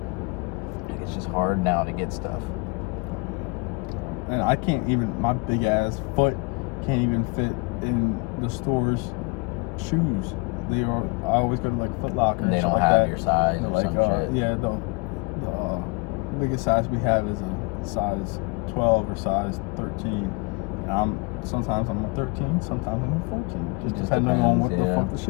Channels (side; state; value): right; quieter; 29.8 dB